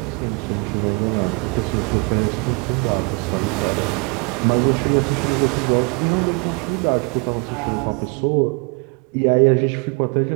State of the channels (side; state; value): left; quieter; 31.1 dB